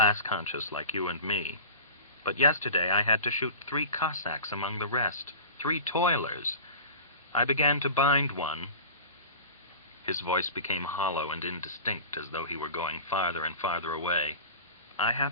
like you and me. But yesterday I had to shoot 3 Cossacks among the rest, 3 toilers. I began to bind one." His voice became hollow and indistinct, as though he were going farther and farther away. "I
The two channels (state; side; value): inverted; both; correlation -0.35